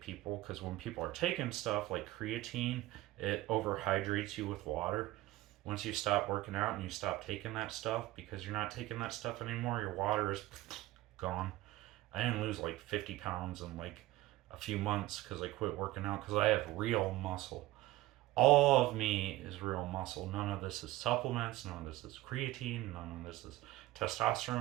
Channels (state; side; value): quieter; left; 17.2 dB